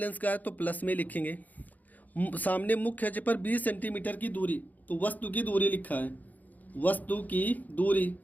का है तो प्लस में लिखेंगे। सामने मुख्य अक्ष पर 20 सेंटीमीटर की दूरी, तो वस्तु की दूरी लिखा है, वस्तु की दूरी,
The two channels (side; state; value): right; late; 0.081 ms